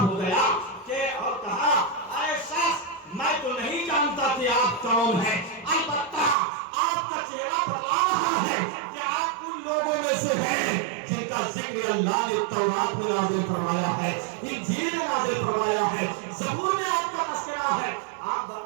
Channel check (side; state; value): left; drops out; at 6.4 s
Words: گیا کہ اور کہا اے شخص میں تو نہیں جانتا کہ آپ کون ہیں, البتہ آپ کا چہرہ بتا رہا ہے کہ آپ ان لوگوں میں سے ہیں جن کا ذکر اللہ نے تورات میں نازل فرمایا ہے, انجیل میں نازل فرمایا ہے, زبور میں آپ کا تذکرہ ہے. آپ